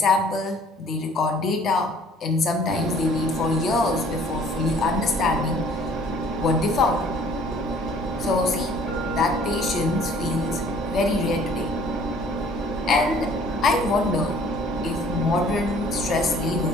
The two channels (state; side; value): normal; both; correlation 0.55